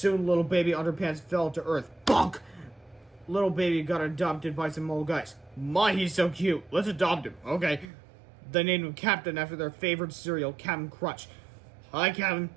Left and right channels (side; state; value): left; drops out; at 7.9 s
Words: little baby Underpants fell to Earth. Bonk! Little baby got adopted by some old guys. My, he's so cute. Let's adopt him. Okay. They named him Captain after their favorite cereal, Captain Crunch. Hi, Captain.